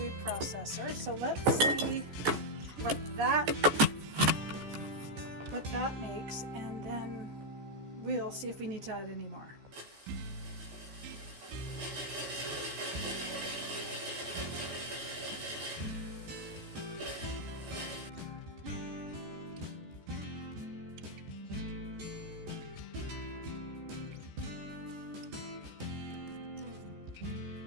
processor. So let's see what that makes, and then we'll see if we need to add any more.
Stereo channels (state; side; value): late; left; 14 ms